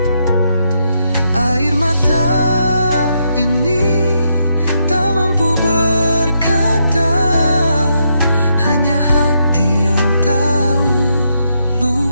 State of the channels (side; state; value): both; inverted; correlation -0.79